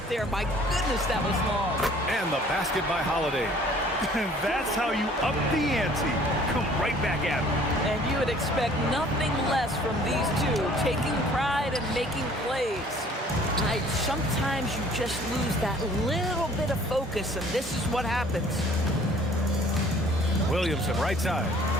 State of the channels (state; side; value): normal; both; correlation 0.54